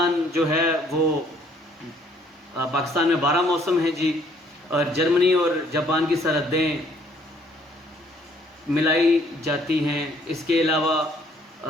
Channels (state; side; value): normal; both; correlation 0.63